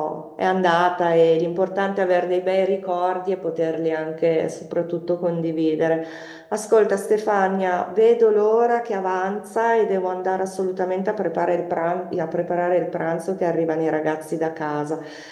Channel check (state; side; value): identical; both; correlation 1.00